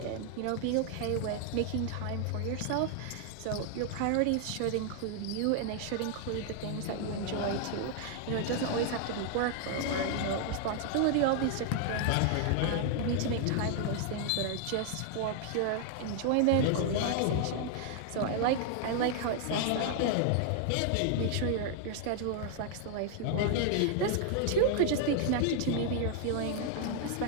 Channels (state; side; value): different; both; correlation 0.00